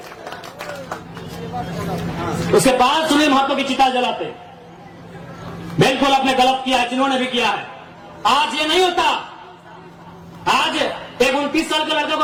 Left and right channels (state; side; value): identical; both; correlation 1.00